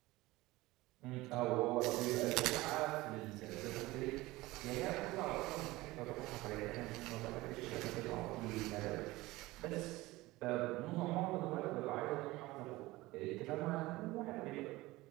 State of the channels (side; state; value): left; quieter; 19.6 dB